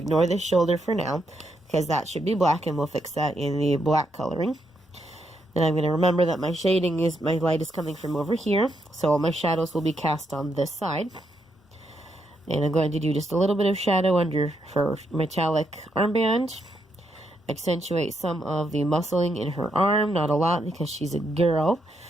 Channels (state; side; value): normal; both; correlation 0.79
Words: this shoulder for now, because that should be black, and we'll fix that in the black coloring. Then I'm going to remember that my shading is, my light is coming from over here, so all my shadows will be cast on this side. And I'm going to do just a little bit of shadow under her metallic armband. Accentuate some of the muscling in her arm, not a lot because she's a girl,